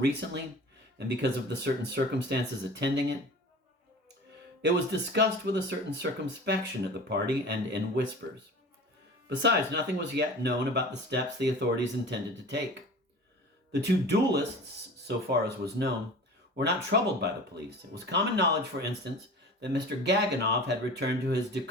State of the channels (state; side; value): normal; both; correlation 0.38